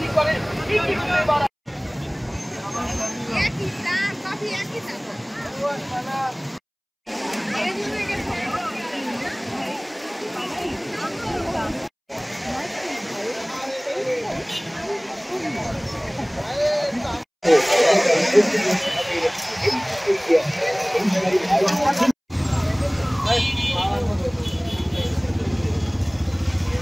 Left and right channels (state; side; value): identical; both; correlation 1.00